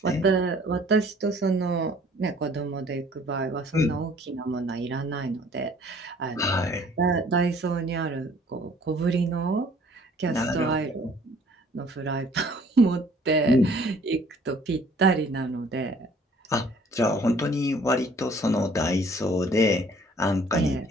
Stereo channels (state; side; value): normal; both; correlation 0.56